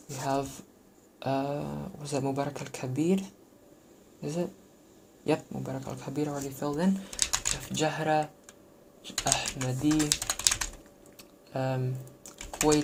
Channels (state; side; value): identical; both; correlation 1.00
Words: we have was that Mubarak al-Kabir? Is it? Yep, Mubarak al-Kabir already filled in. We have Jahra, Ahmadi,